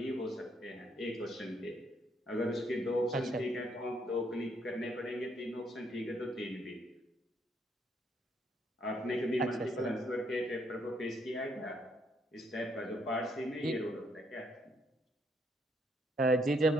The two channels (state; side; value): normal; both; correlation 0.71